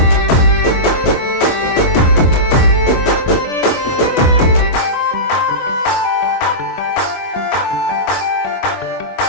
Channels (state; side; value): late; right; 24 ms